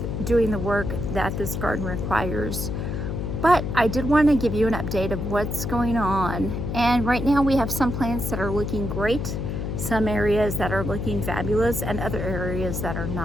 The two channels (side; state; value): left; noise; hum, 3 dB below the sound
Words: doing the work that this garden requires. But I did want to give you an update of what's going on. And right now we have some plants that are looking great, some areas that are looking fabulous, and other areas that are